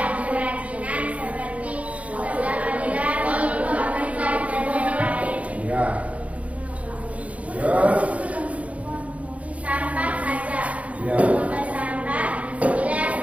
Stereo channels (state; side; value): late; left; 0.066 ms